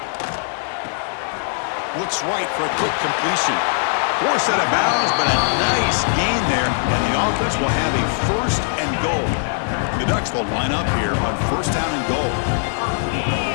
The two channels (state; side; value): silent; right; digital silence